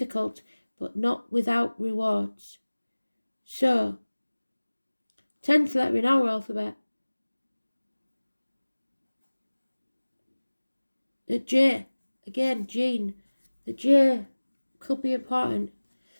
but not without rewards. So, 10th letter in our alphabet, the J, again, Gene. The J could be important.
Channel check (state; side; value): inverted; both; correlation -1.00